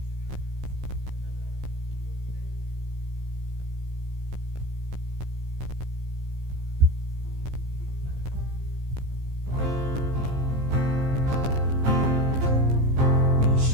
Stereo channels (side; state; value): left; late; 15 ms